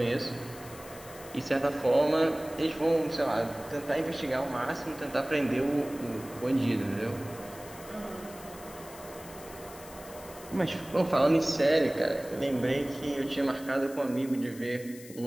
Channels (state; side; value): noise; left; hiss, 18 dB below the sound